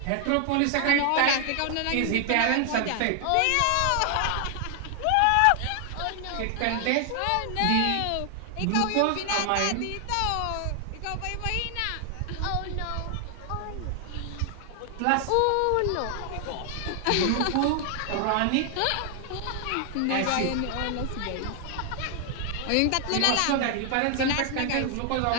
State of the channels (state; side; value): different; both; correlation 0.00